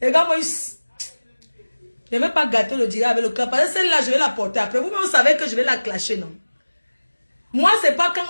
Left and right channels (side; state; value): both; inverted; correlation -1.00